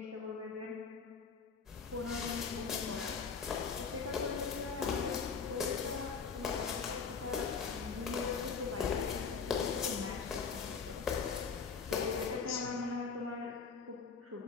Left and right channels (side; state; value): right; quieter; 5.5 dB